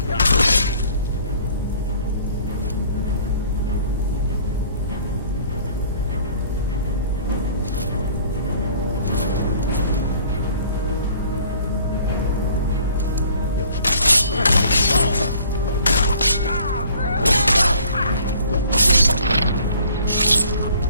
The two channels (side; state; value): both; inverted; correlation -0.54